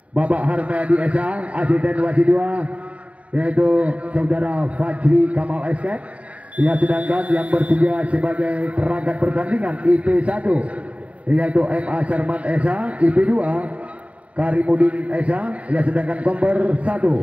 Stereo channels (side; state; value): left; late; 0.066 ms